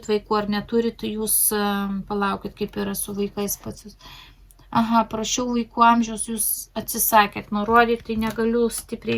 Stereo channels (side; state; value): both; identical; correlation 1.00